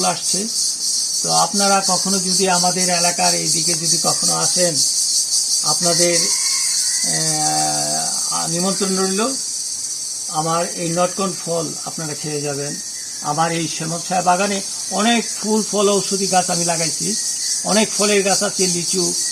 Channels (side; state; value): both; identical; correlation 1.00